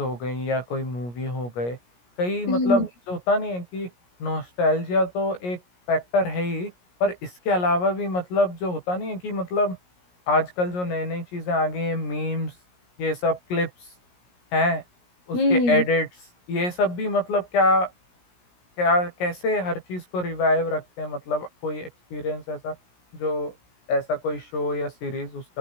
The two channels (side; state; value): right; late; 17 ms